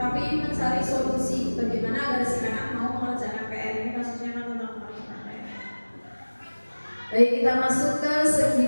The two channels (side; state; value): both; inverted; correlation -1.00